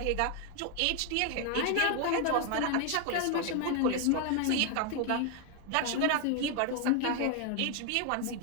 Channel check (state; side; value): different; both; correlation 0.01